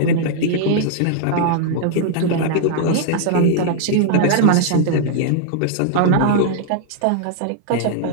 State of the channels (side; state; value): both; different; correlation -0.01